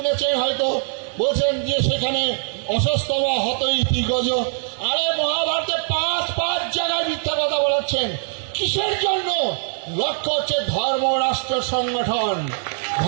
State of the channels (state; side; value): silent; left; 64 dB below the other